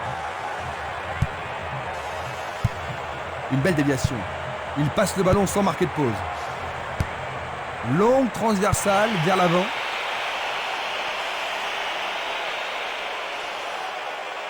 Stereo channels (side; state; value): both; identical; correlation 1.00